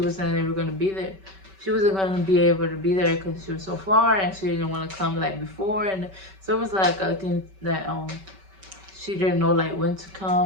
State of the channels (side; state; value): left; late; 5.2 ms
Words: wasn't ever gonna be there. She wasn't gonna be able to be there because she was so far and she didn't want to come like before, and so it was like a thing that she didn't know like when to